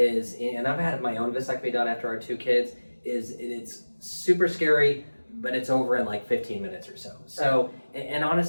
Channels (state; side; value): inverted; both; correlation -1.00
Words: and I've had my own vasectomy done after our 2 kids, is it's super scary, but it's over in like 15 minutes or so. So, and